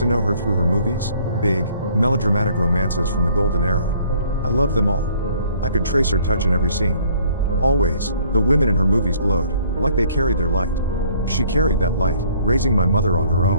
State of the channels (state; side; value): inverted; both; correlation -0.59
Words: know her through her movies, big, melodramatic romances from the golden era. I loved them all. I could trace her touch in every scene. Always, the women in her movies glowed, like they carried their light. She carried that light, raising my mother on her